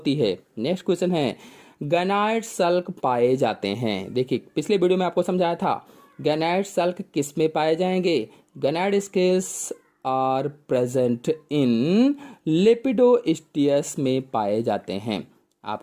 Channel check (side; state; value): both; identical; correlation 1.00